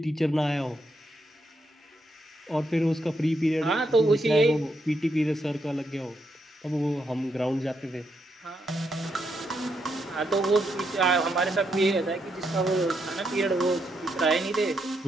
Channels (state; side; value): normal; both; correlation 0.79